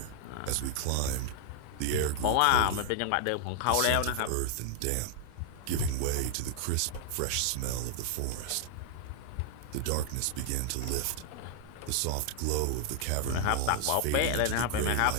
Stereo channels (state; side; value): different; both; correlation 0.00